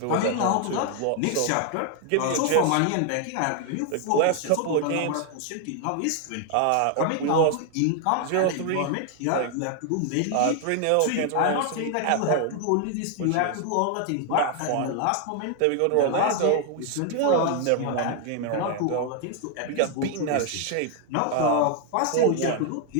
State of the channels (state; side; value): different; both; correlation 0.00